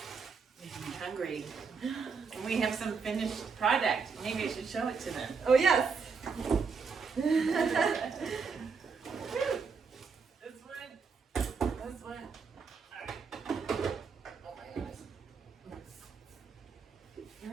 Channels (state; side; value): quieter; left; 5.3 dB